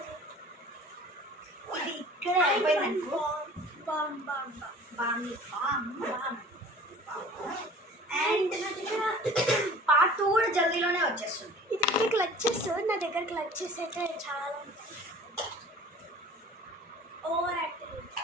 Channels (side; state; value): both; normal; correlation 0.45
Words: ఇది ఇక్కడ అయిపోయింది. అండ్ నా దగ్గర పార్ట్ 2 కూడా జల్దీలోనే వచ్చేస్తుంది. ఇది దగ్గర క్లచెస్, నా దగ్గర క్లచెస్ అయితే చాలా ఉంటాయి. Over active